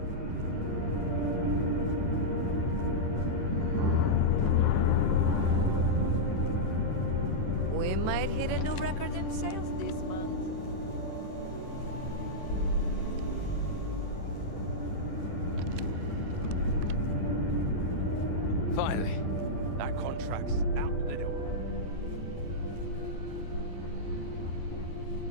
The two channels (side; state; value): right; late; 10 ms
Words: We might hit a new record in sales this month. Finally, that contract's out the door.